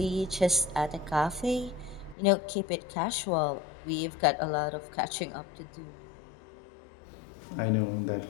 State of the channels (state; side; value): drops out; right; at 2.1 s